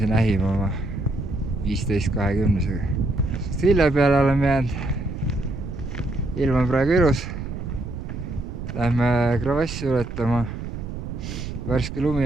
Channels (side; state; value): right; noise; rumble, 8 dB below the sound